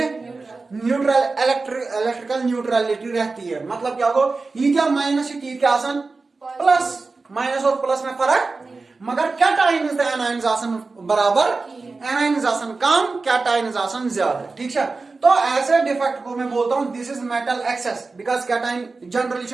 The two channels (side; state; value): left; quieter; 3.9 dB